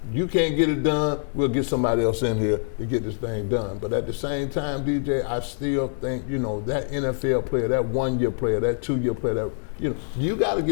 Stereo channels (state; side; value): silent; right; digital silence